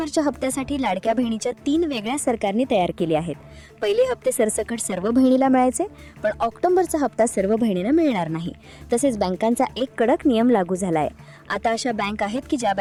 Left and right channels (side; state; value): both; identical; correlation 1.00